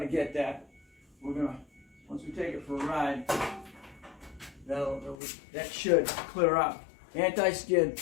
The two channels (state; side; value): drops out; right; at 5.2 s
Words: get that. We're gonna, once we take it for a ride, that should clear up. Anti-skid,